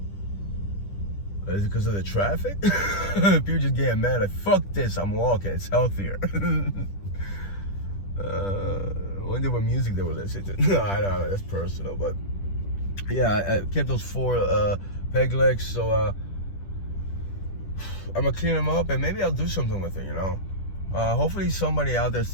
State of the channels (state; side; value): late; right; 10 ms